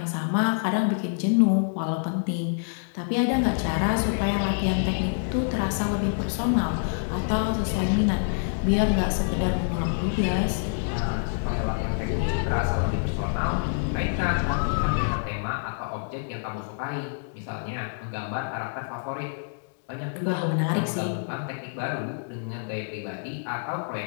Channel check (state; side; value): silent; right; digital silence